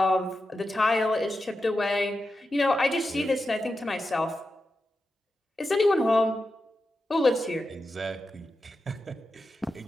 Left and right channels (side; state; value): both; normal; correlation 0.90